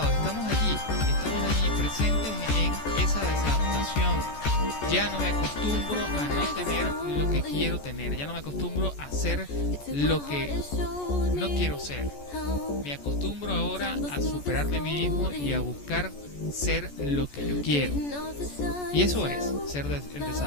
Estamos allí presentes en esa desadaptación. Ya no me acostumbro a no tener lo que quiero tener, ya no me acostumbro a ser lo que no quiero ser. Me acostumbro ahora a superarme a mí mismo y a buscar ser lo que yo quiero. Y eso es ser el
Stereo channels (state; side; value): late; right; 14 ms